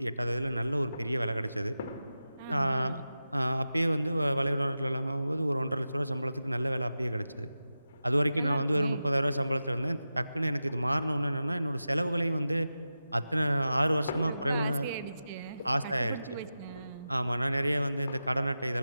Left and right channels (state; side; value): inverted; both; correlation -0.93